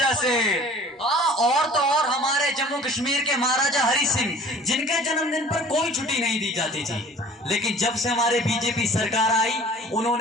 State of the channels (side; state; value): both; normal; correlation 0.48